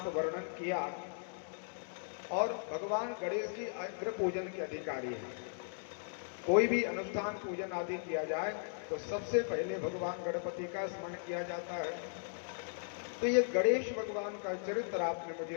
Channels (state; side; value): silent; right; digital silence